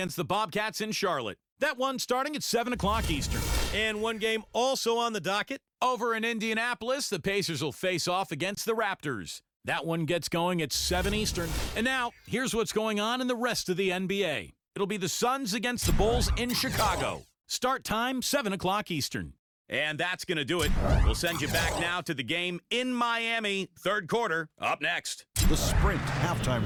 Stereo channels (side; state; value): both; identical; correlation 1.00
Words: the Bobcats in Charlotte. That one starting at 7 o'clock Eastern. And one game also on the docket. Over in Indianapolis, the Pacers will face off against the Raptors. That one gets going at 7 Eastern. And now, here's what's going on in the rest of the NBA. It'll be the Suns against the Bulls in Chicago. Start time, 7 o'clock Eastern. And that's going to do it. We'll send you back now to the game in Miami, third quarter, up next. The Sprint